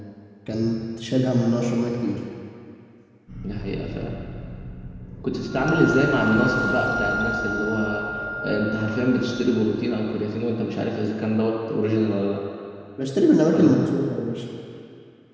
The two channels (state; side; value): identical; both; correlation 1.00